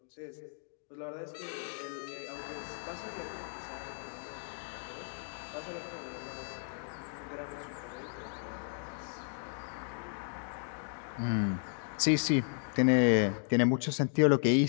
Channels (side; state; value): right; silent; 55 dB below the other